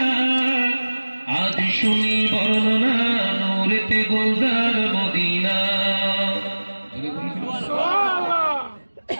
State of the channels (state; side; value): inverted; both; correlation -1.00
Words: আজ শুনি বর্ণনা, নূরেতে গুলজার মদিনা।